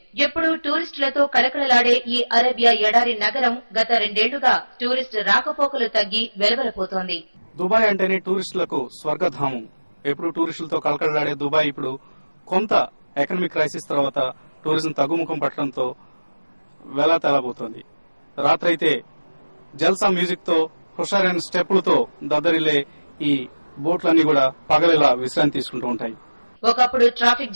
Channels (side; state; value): both; inverted; correlation -1.00